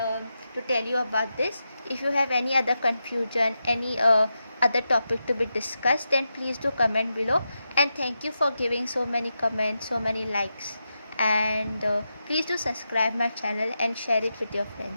to tell you about this. If you have any other confusion, any other topic to be discussed, then please do comment below. And thank you for giving so many comments, so many likes. And please do subscribe my channel and share it with your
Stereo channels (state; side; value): inverted; both; correlation -0.88